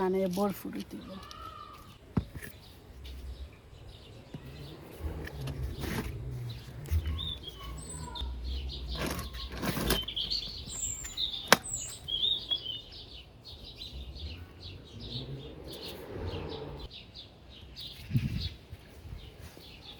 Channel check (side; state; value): both; identical; correlation 1.00